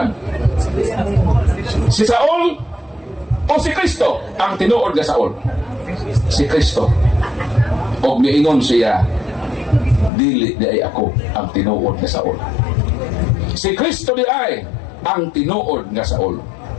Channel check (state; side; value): drops out; right; at 10.1 s